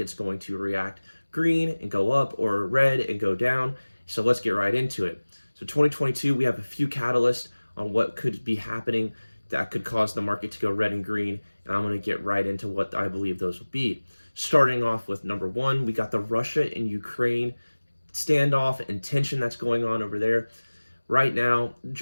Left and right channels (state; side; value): inverted; both; correlation -1.00